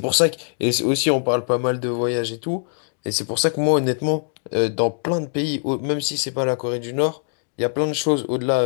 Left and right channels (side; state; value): right; silent; digital silence